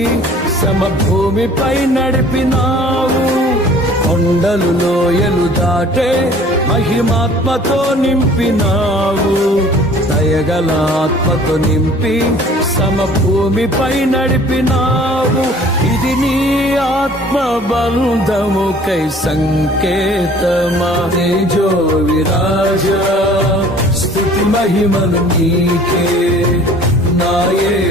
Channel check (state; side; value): normal; both; correlation 0.51